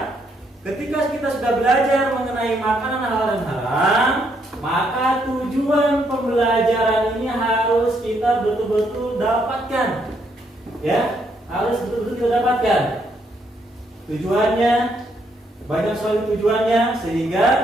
ketika kita sudah belajar mengenai makanan halal dan haram, maka tujuan pembelajaran ini harus kita betul-betul dapatkan, ya. Harus betul-betul kita dapatkan. Tujuannya banyak sekali tujuannya, sehingga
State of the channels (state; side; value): normal; both; correlation 0.74